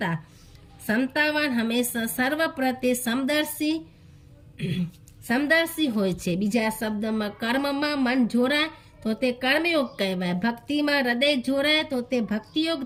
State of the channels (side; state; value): both; identical; correlation 1.00